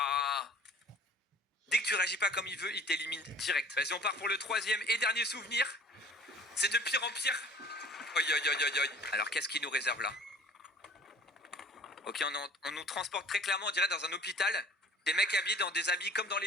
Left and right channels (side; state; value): both; normal; correlation 0.48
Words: Dès que tu réagis pas comme il veut, il t'élimine direct. Vas-y, on part pour le troisième et dernier souvenir. C'est de pire en pire. Oi, oi, oi, oi, oi. Alors, qu'est-ce qu'il nous réserve là? Ok, on nous transporte très clairement, on dirait, dans un hôpital. Des mecs habillés dans des habits comme dans